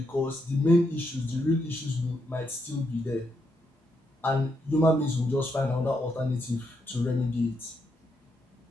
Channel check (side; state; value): both; normal; correlation 0.79